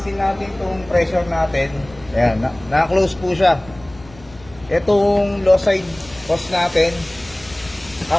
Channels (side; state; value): left; noise; rumble, 22 dB below the sound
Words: natin itong pressure natin, ayan, na-close po siya. Itong low side hose natin,